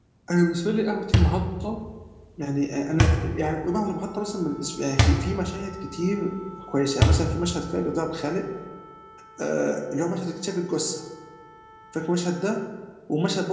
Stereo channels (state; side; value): identical; both; correlation 1.00